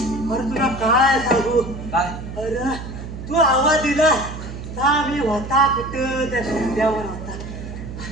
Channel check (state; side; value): noise; right; hum, 9 dB below the sound